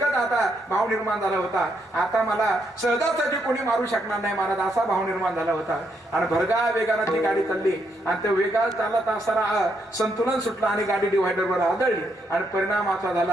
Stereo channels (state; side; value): normal; both; correlation 0.77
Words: आता भाव निर्माण झाला होता, आता मला सहजासहजी कोणी मारू शकणार नाही महाराज, असा भाव निर्माण झाला होता. आणि भरगा वेगानं ती गाडी चालली, आणि त्या वेगात चालत असताना संतुलन सुटलं आणि गाडी डिव्हायडरवर आदळली. आणि परिणाम असा